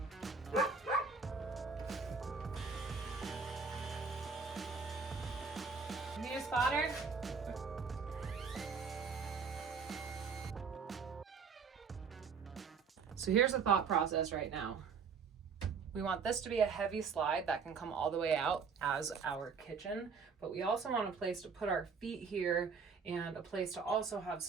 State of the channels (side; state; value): left; quieter; 5.4 dB